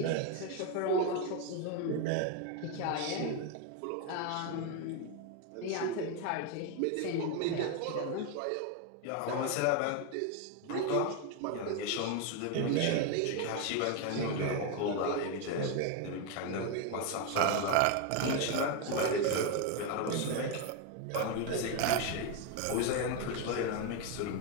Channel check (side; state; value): both; different; correlation 0.02